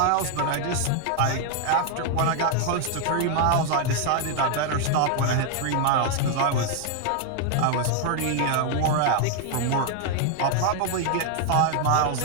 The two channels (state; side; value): different; both; correlation 0.00